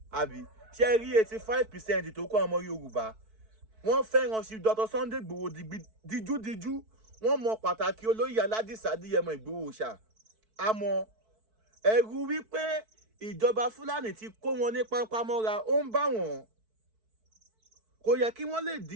àbí ṣé rí 85% tó kọ́ ọmọ Yorùbá wọ́n fẹ́ràn Chief Dr. Sunday Igboho díjúdíjú wọ́n mọ pàtàkì olóyè Aládìsá Adéyẹmọ Ìgbòho ṣá àmọ́ ẹ̀rù wípé ìjọba Fúlàní ti kó wọn ní pápámọ́ra ó ń bá wọn kò yẹ kí wọ́n lè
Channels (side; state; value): left; late; 4.6 ms